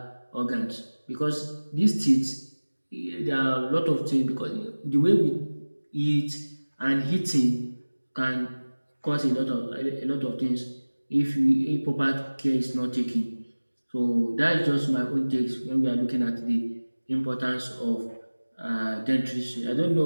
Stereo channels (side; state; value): both; inverted; correlation -1.00